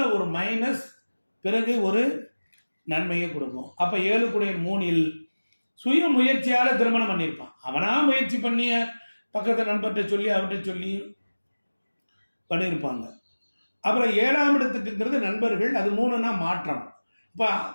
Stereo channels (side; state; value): both; inverted; correlation -1.00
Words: ஒரு மைனஸ், பிறகு ஒரு நன்மையை கொடுக்கும். அப்ப 7 சுய முயற்சியால திருமணம் பண்ணியிருப்பான். அவனா முயற்சி பண்ணிய பக்கத்தை நண்பர்கிட்ட சொல்லி அவர்கிட்ட சொல்லி பண்ணியிருப்பாங்க. அப்புறம் 7ஆம் இடத்துக்குங்கிறது நண்பர்கள், அது 3னா மாற்றம். இப்ப